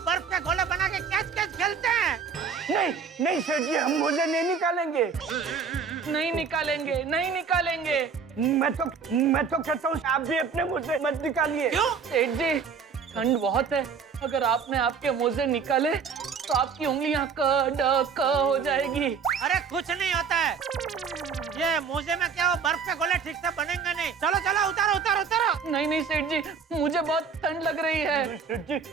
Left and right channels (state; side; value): quieter; left; 6.0 dB